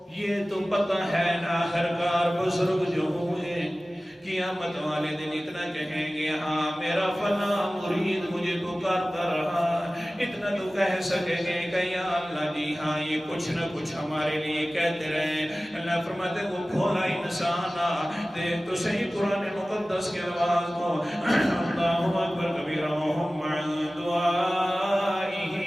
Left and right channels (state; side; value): normal; both; correlation 0.97